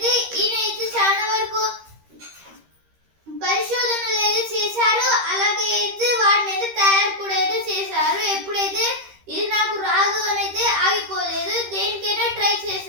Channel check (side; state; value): left; late; 13 ms